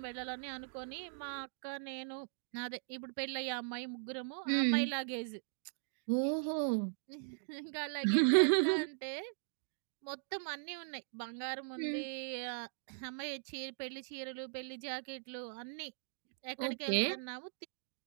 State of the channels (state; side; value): silent; left; digital silence